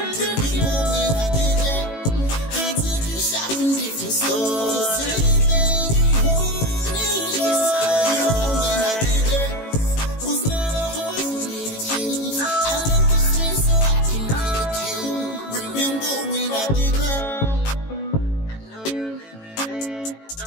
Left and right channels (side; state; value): right; late; 18 ms